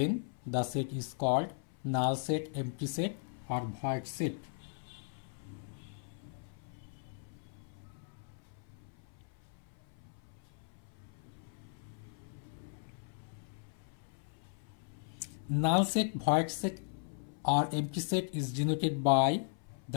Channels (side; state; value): right; silent; 53 dB below the other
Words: the set is called null set, empty set or void set. Null set, void set or empty set is denoted by